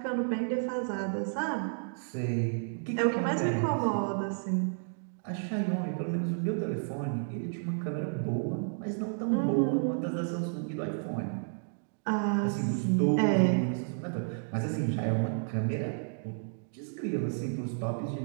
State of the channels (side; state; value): left; silent; digital silence